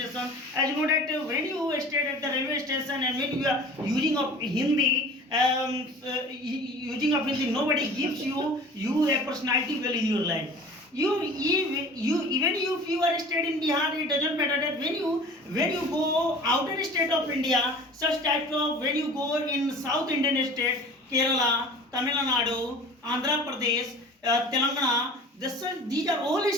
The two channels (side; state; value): both; normal; correlation 0.42